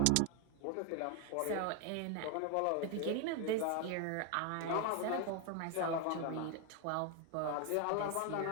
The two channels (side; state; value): both; different; correlation 0.01